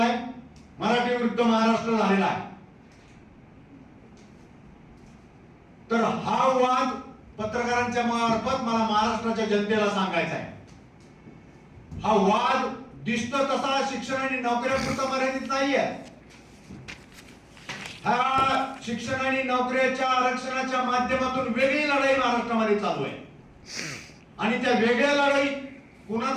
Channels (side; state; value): both; identical; correlation 1.00